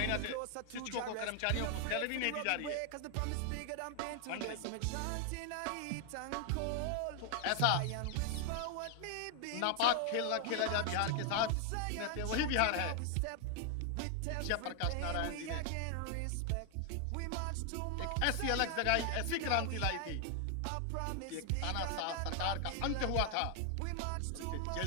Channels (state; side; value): different; both; correlation 0.00